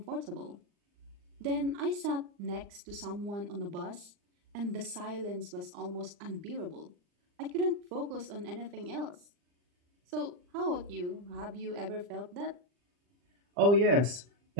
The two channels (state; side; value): late; left; 39 ms